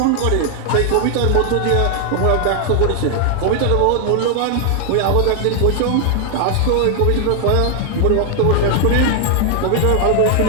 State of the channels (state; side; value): different; both; correlation 0.00